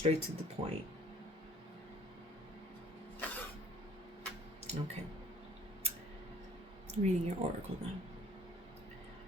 to the point. Okay. Reading your oracle now.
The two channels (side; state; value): both; normal; correlation 0.56